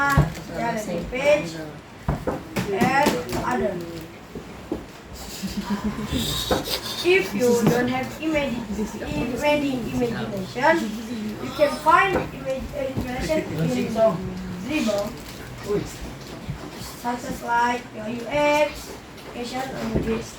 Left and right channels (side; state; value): both; identical; correlation 1.00